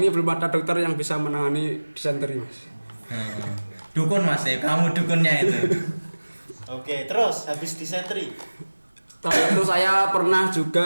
belum ada dokter yang bisa menangani disenteri Mas. Dukun Mas ya, kamu dukunnya itu. Oke, terus habis disenteri, Setelah itu saya pernah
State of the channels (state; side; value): inverted; both; correlation -1.00